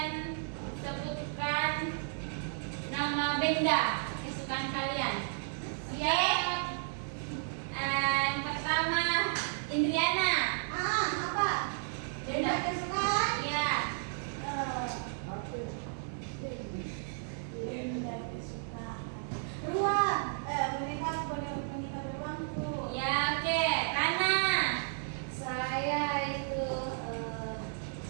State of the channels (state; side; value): silent; left; digital silence